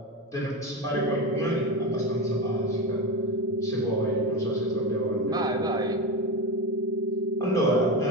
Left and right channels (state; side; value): normal; both; correlation 0.18